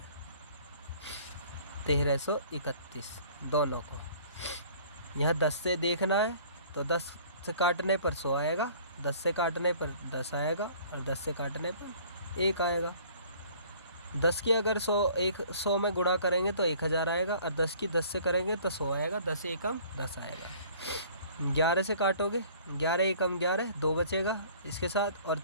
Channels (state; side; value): inverted; both; correlation -0.52